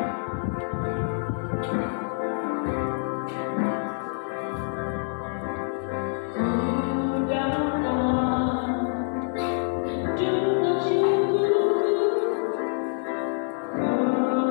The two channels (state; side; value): silent; right; 61 dB below the other